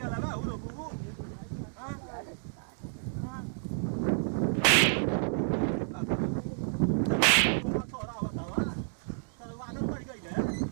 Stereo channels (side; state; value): left; silent; digital silence